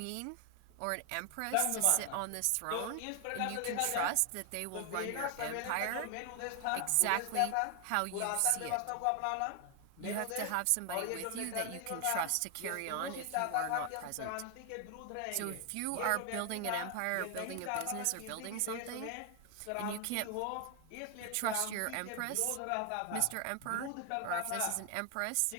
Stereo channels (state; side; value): different; both; correlation 0.00